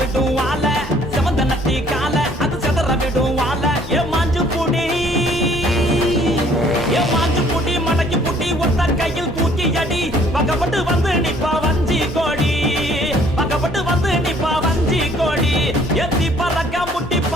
வாழ செவந்த நத்தி கால அது செதற விடும் வாழ ஏ மாஞ்சு புடி மடக்கி புட்டி ஒத்த கையில் தூக்கி அடி பக்கப்பட்டு வந்து நிப்பா வஞ்சி கோடி பக்கப்பட்டு வந்து நிப்பா வஞ்சி கோடி எத்தி பறக்க முட்டி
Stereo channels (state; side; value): normal; both; correlation 0.59